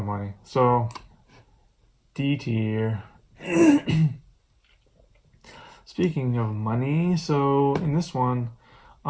money." So D tier. Speaking of money, so in this one,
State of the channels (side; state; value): both; identical; correlation 1.00